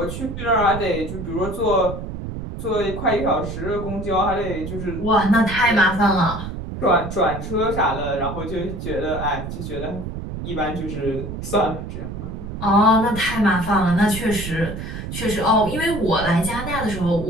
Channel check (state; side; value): noise; right; rumble, 7 dB below the sound